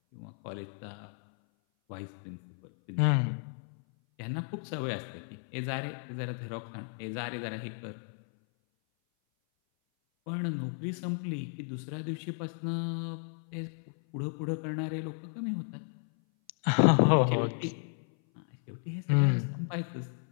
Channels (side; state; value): right; silent; 56 dB below the other